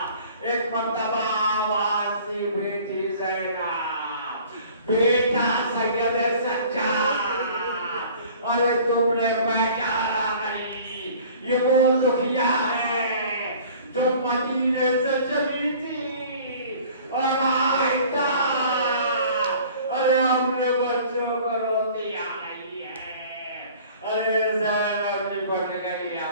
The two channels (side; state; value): both; inverted; correlation -0.48